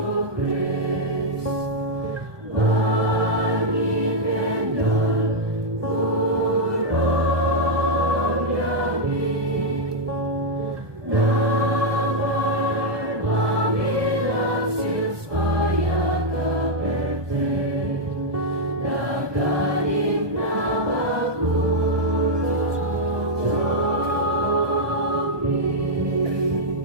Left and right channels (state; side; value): late; left; 1.2 ms